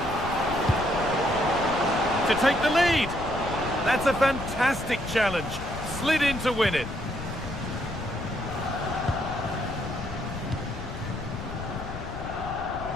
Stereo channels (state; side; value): noise; left; rumble, 9 dB below the sound